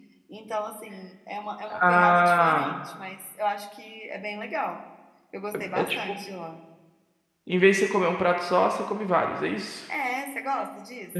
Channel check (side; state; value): both; identical; correlation 1.00